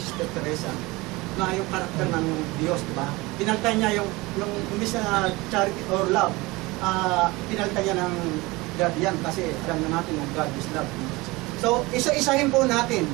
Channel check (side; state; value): left; quieter; 22.3 dB